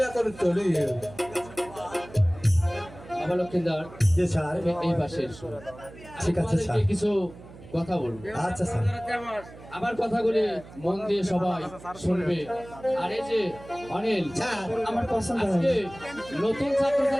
এখন চলি। বাবা লক্ষ্মীদার, জি স্যার। এই পাশে এসো। ঠিক আছে, তোমাদেরকে স্যার। কিছু কথা বলবো। আচ্ছা স্যার। আমার কথাগুলি মন দিয়ে সবাই শুনবে। আর এই যে অনিল, আমার পছন্দ আজকে হয়। নতুন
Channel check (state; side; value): noise; right; hum, 18 dB below the sound